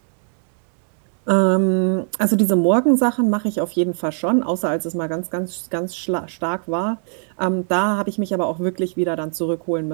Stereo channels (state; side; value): silent; left; digital silence